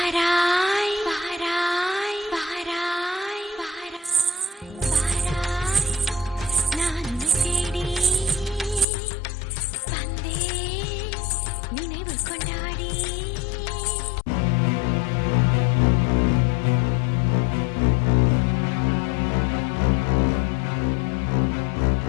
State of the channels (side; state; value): right; drops out; at 8.8 s